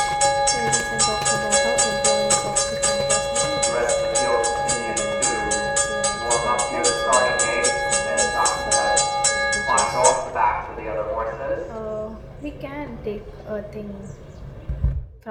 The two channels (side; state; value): both; identical; correlation 1.00